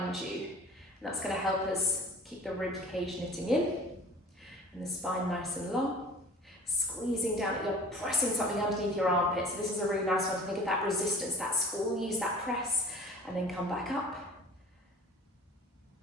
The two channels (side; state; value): both; normal; correlation 0.45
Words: you. And that's going to help us keep the rib cage knitting in and the spine nice and long. Squeezing down, you're pressing something underneath your armpit. So this is a really nice one to think of that resistance, that squeeze, that press, and then come back up.